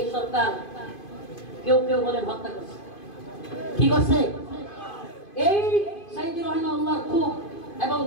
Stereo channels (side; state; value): right; late; 2.5 ms